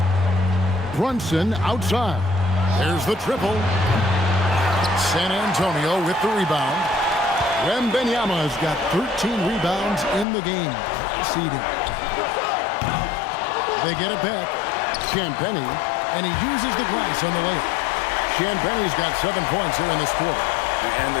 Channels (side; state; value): right; drops out; at 10.2 s